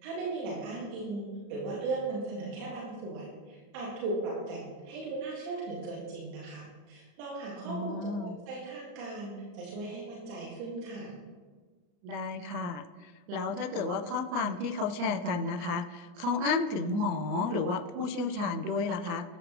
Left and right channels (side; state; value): left; late; 35 ms